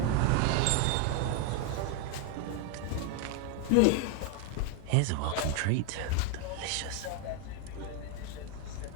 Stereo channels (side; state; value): both; different; correlation 0.01